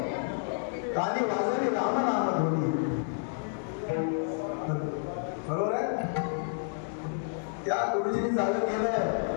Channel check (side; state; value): right; silent; digital silence